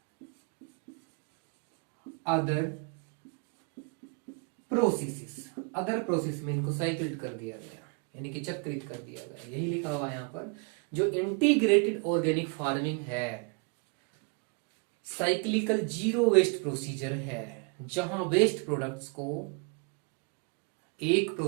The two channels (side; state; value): left; quieter; 33.4 dB